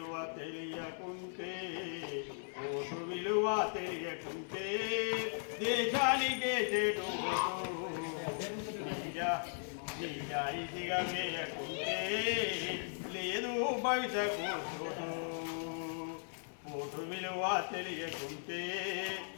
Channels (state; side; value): silent; right; 53 dB below the other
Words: తెలియకుంటే దేశానికే చెడు. నిజాయితీగా వేయకుంటే లేదు భవిష్యత్తు చోటు. ఓటు విలువ తెలియకుంటే